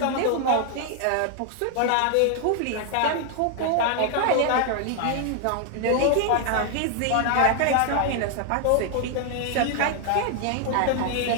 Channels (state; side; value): different; both; correlation 0.00